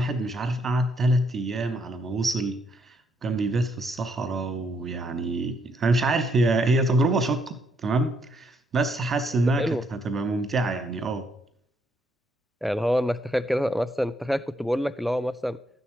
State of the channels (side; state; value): both; normal; correlation 0.74